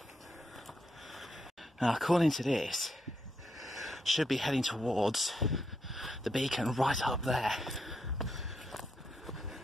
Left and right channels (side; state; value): both; normal; correlation 0.81